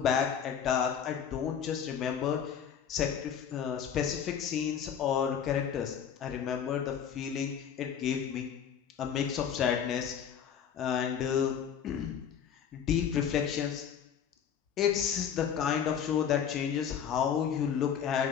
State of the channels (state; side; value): quieter; right; 8.2 dB